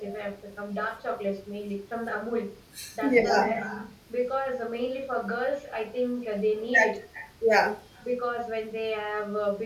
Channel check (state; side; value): identical; both; correlation 1.00